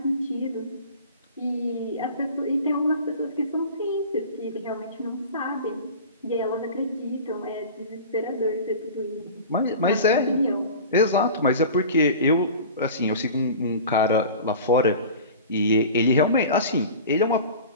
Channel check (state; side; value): inverted; both; correlation -0.37